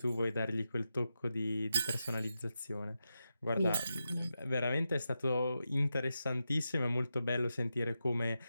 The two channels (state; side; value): inverted; both; correlation -0.89